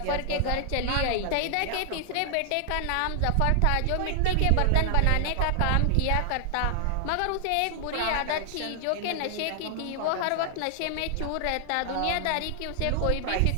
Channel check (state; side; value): different; both; correlation 0.00